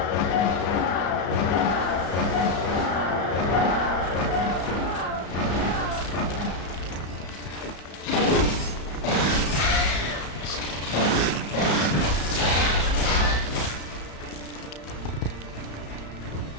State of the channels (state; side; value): late; right; 34 ms